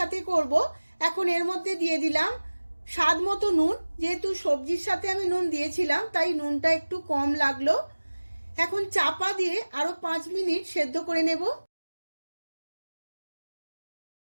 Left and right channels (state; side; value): inverted; both; correlation -1.00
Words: করব। এখন এর মধ্যে দিয়ে দিলাম স্বাদ মতো নুন। যেহেতু সবজির সাথে আমি নুন দিয়েছিলাম, তাই নুনটা একটু কম লাগলো। এখন চাপা দিয়ে আরো 5 মিনিট সেদ্ধ করে নেব।